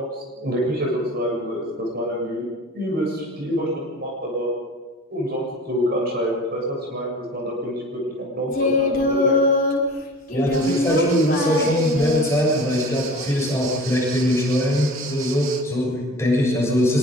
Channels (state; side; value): normal; both; correlation 0.41